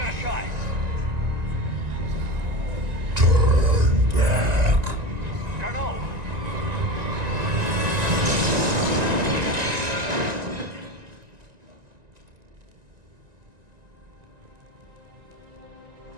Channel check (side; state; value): left; late; 1.9 ms